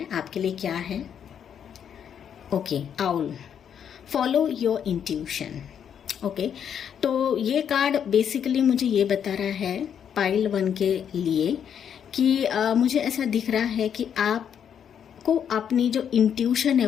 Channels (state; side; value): quieter; right; 8.4 dB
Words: आपके लिए क्या है। Okay, owl, follow your intuition. Okay, तो ये कार्ड बेसिकली मुझे ये बता रहा है पाइल 1 के लिए कि मुझे ऐसा दिख रहा है कि आपको अपनी जो इंट्यूशन है